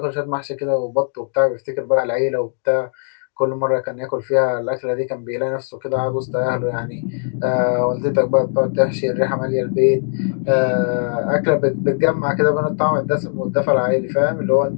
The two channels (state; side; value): silent; right; digital silence